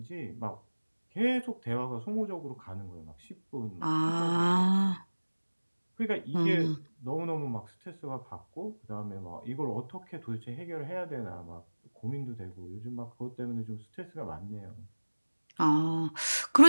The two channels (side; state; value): both; inverted; correlation -1.00